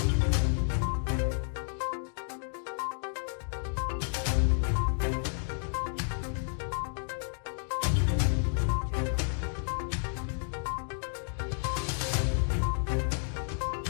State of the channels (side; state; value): right; silent; digital silence